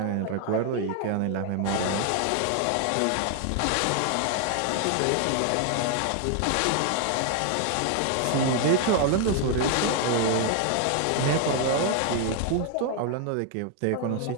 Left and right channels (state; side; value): different; both; correlation 0.00